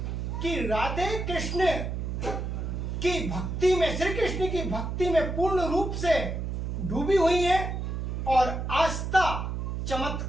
कि राधे कृष्ण की भक्ति में, श्री कृष्ण की भक्ति में पूर्ण रूप से डूबी हुई है। और आस्था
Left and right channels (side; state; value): right; noise; hum, 3 dB below the sound